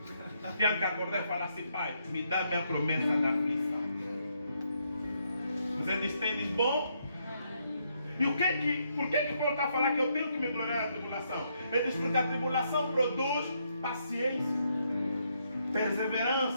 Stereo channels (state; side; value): inverted; both; correlation -0.75